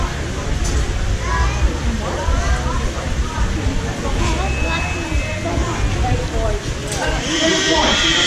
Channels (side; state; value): both; identical; correlation 1.00